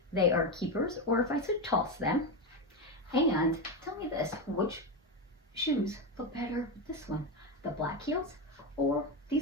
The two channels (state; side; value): normal; both; correlation 0.13